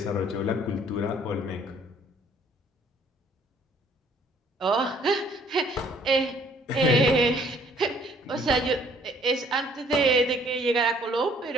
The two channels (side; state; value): both; normal; correlation 0.60